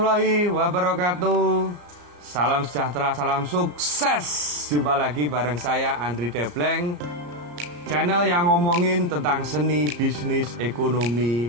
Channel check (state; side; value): late; left; 34 ms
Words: wabarakatuh. Salam sejahtera, salam sukses. Jumpa lagi bareng saya Andri Debleng, channel yang ngomongin tentang seni, bisnis,